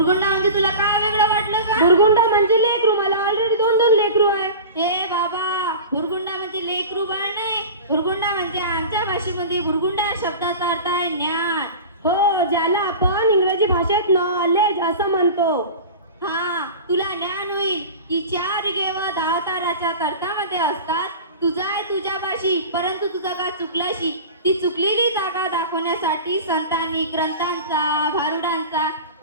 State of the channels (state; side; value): inverted; both; correlation -0.34